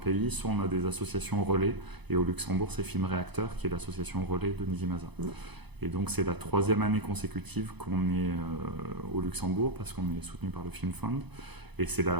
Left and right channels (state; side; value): late; left; 0.99 ms